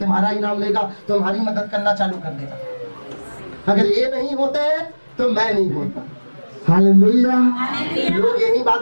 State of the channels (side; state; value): both; inverted; correlation -1.00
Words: ही नाम लेगा, तुम्हारी मदद करना चालू कर देगा। अगर ये नहीं होते तो मैं नहीं होता। हालेलुया। लोग यही